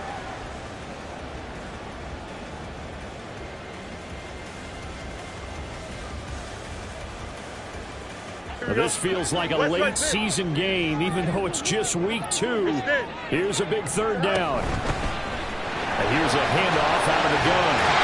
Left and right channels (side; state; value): both; identical; correlation 1.00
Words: This feels like a late season game, even though it's just week 2. Here's a big third down. And here's a handoff out of the gun.